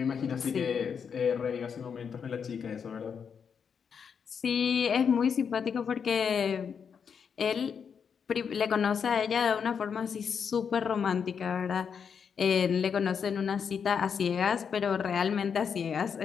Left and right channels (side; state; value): right; quieter; 6.8 dB